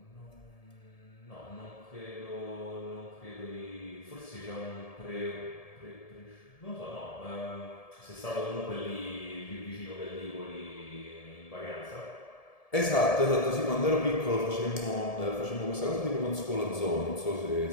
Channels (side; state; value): right; late; 1.7 ms